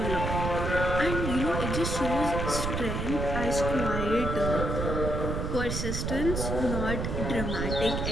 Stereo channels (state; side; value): noise; right; rumble, 2 dB below the sound